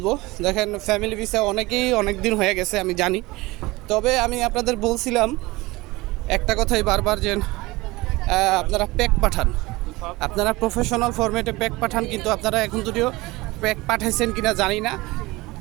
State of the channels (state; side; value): quieter; left; 21.3 dB